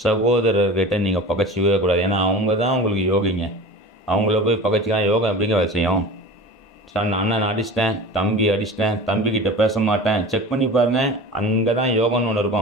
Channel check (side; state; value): both; normal; correlation 0.36